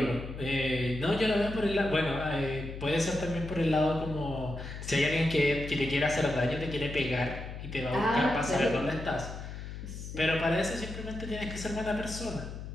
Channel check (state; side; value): noise; left; hum, 9 dB below the sound